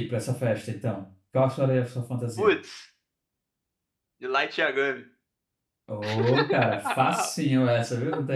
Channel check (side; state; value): both; identical; correlation 1.00